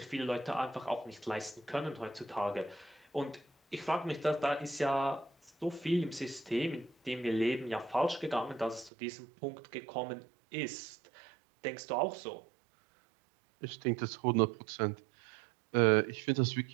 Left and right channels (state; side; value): drops out; left; at 8.9 s